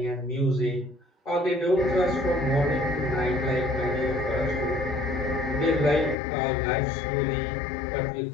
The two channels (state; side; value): drops out; right; at 6.2 s